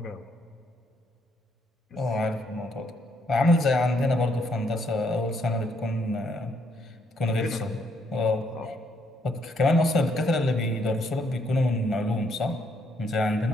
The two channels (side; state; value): both; normal; correlation 0.72